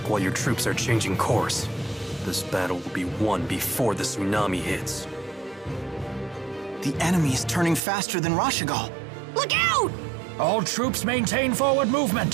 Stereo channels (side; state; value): left; drops out; at 7.8 s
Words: while your troops are changing course. This battle will be won before the tsunami hits. The enemy is turning faster than Rashigal. Look out! All troops maintain forward